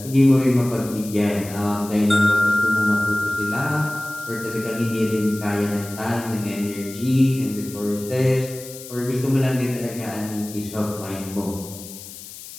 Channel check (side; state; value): left; noise; hiss, 14 dB below the sound